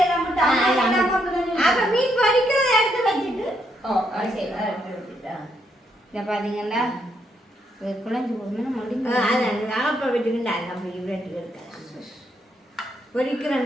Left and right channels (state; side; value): normal; both; correlation 0.76